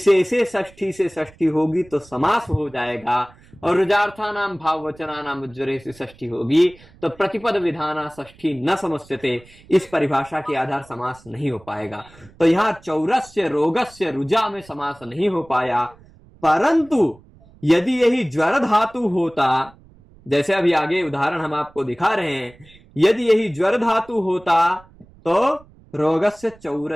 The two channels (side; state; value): right; noise; rumble, 26 dB below the sound